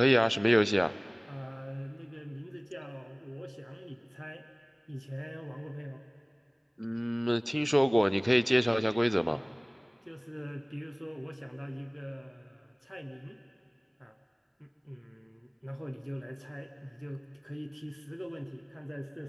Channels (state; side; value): identical; both; correlation 1.00